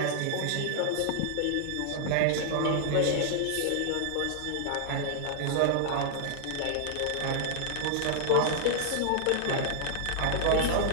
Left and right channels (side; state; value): both; different; correlation -0.01